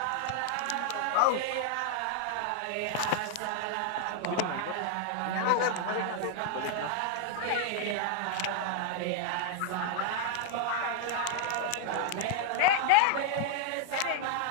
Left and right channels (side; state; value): both; different; correlation 0.00